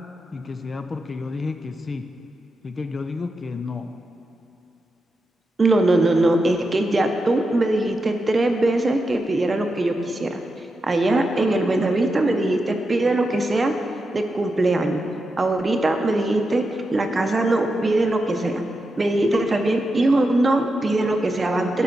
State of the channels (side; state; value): both; normal; correlation 0.88